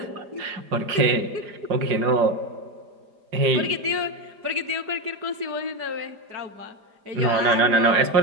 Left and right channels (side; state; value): left; late; 4.9 ms